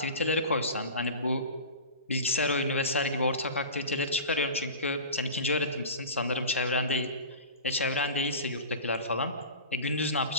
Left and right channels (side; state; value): both; inverted; correlation -0.33